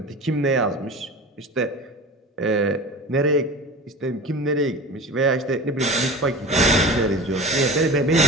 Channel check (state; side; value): normal; both; correlation 0.34